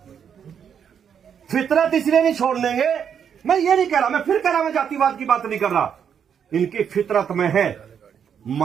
फितरत इसलिए नहीं छोड़ देंगे। मैं ये नहीं कह रहा, मैं फिर कह रहा, मैं जातिवाद की बात नहीं कर रहा। इनकी फितरत में है,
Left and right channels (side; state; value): left; quieter; 7.9 dB